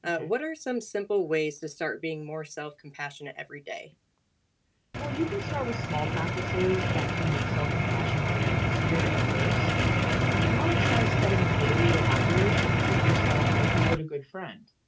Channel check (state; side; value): identical; both; correlation 1.00